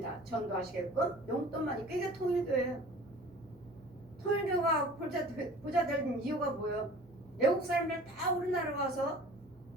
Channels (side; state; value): both; normal; correlation 0.45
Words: 전도하시게끔 용돈만. 이게 통일교예요. 통일교가 부자 된 이유가 뭐예요? 외국 사람들 다 우리나라 와서